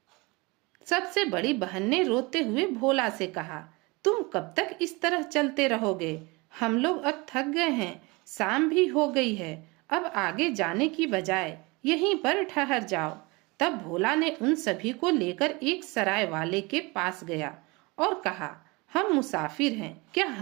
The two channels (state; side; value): quieter; left; 25.5 dB